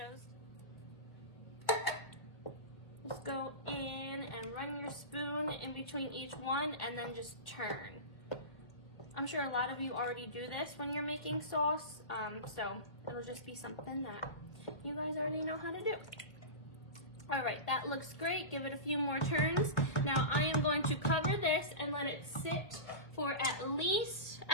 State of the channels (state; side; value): late; right; 1.3 ms